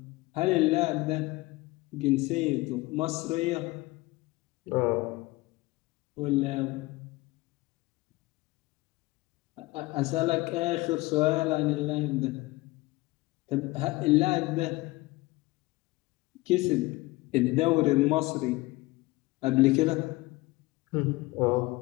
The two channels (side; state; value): right; quieter; 21.3 dB